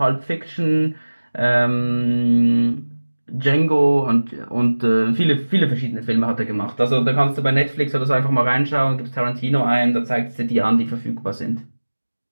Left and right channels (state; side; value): inverted; both; correlation -1.00